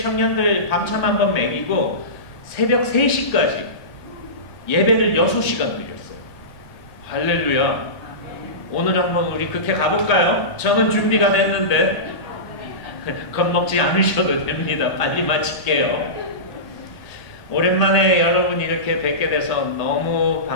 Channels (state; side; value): late; right; 1.7 ms